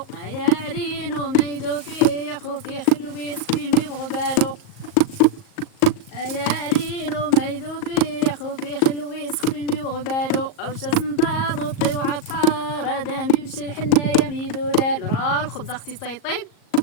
يا عرينو ميدو في خوفي خلويز تفيمي وغبالو يا عرينو ميدو في خوفي خلويز خفيمي وغبالو اوش سنطاضو طيو عطار دامي وش الحنايا ميدولال. راه الخبز اختي تيطيب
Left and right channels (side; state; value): right; late; 38 ms